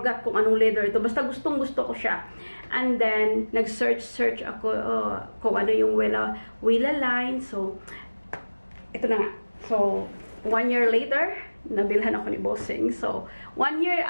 kung anong leather ito, basta gustong-gusto ko siya. And then, nag-search ako kung ano yung Wella line, so, ito na nga. So, 1 year later, nabilhan ako ni Bossing. So, 1 year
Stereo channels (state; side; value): inverted; both; correlation -1.00